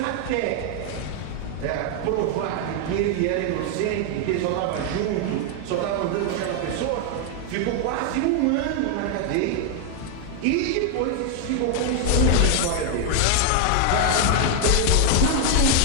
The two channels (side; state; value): both; different; correlation 0.00